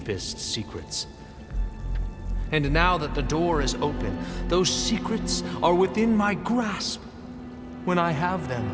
secrets. And now that the door is open, those secrets are within my grasp. When I have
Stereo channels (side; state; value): both; identical; correlation 1.00